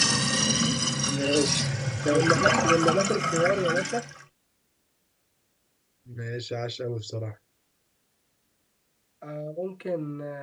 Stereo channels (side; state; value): both; identical; correlation 1.00